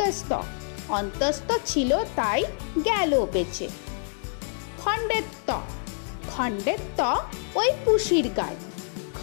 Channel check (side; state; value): right; silent; digital silence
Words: অন্তস্থ ছিল তাই গেল বেঁচে। খণ্ডের ত খণ্ডের ত ওই পুষির গায়ে।